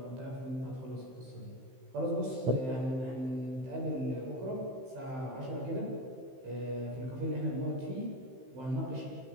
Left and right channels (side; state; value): left; late; 15 ms